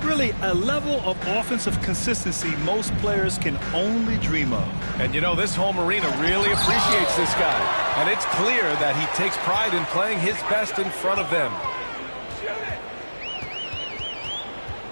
Really, a level of offensive consistency most players can only dream of. And you know, this home arena really appreciates this guy. And it's clear that he takes pride in playing his best in front of them.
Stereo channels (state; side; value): inverted; both; correlation -1.00